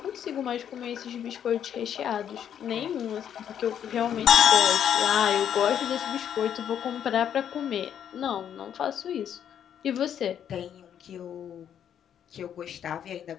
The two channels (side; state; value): right; quieter; 9.3 dB